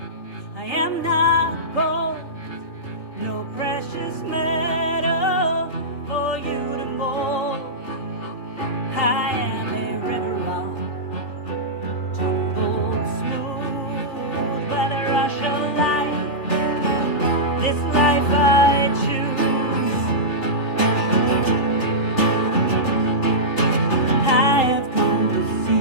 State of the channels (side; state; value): right; late; 3.8 ms